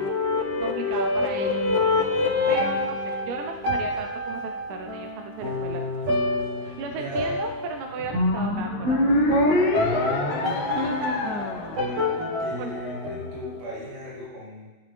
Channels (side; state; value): left; late; 20 ms